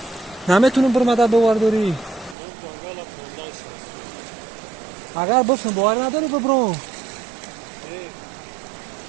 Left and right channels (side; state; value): left; drops out; at 2.4 s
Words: نمیتونم برو مدد بوارداری. اگر بفهم باور نداری ببرو.